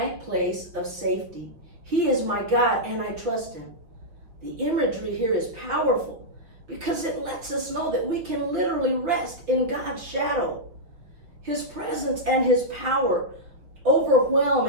place of safety. He is my God, and I trust him." The imagery here is powerful because it lets us know that we can literally rest in God's shadow. His presence and his power overwhelm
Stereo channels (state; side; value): late; left; 5.5 ms